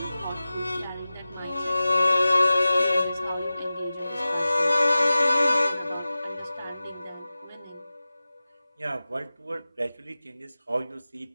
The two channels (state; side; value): inverted; both; correlation -0.96